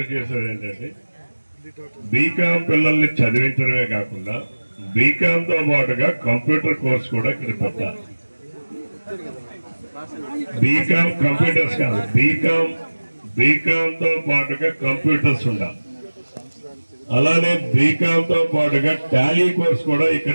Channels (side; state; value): both; inverted; correlation -1.00